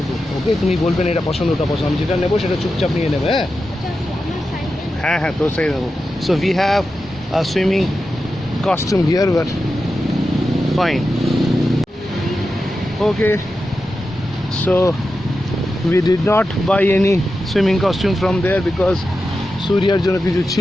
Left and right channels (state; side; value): normal; both; correlation 0.90